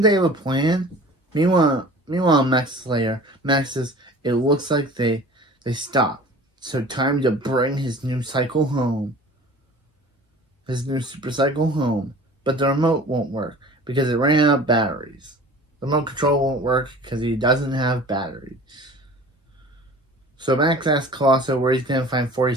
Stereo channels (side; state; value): both; normal; correlation 0.43